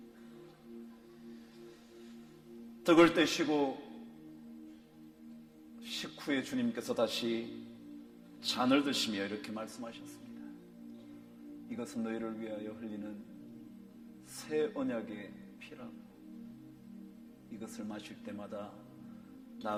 떡을 떼시고 식후에 주님께서 다시 잔을 드시며 이렇게 말씀하셨습니다. 이것은 너희를 위하여 흘리는 새 언약의 피라고. 이것을 마실 때마다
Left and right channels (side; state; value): both; identical; correlation 1.00